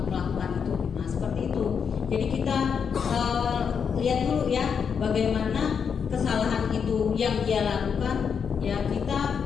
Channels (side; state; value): right; quieter; 6.7 dB